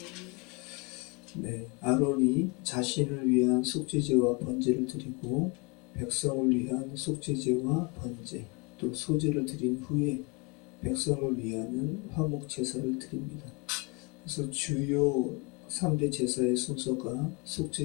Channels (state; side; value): quieter; right; 29.2 dB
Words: 네, 아론이 자신을 위한 속죄제와 번제를 드리고 백성을 위한 속죄제와 번제 또 소제를 드린 후에 백성을 위하는 화목 제사를 드립니다. 그래서 주요 3대 제사의 순서가